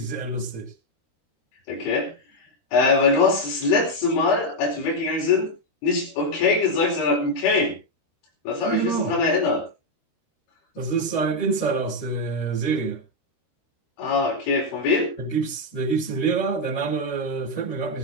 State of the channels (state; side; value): late; right; 13 ms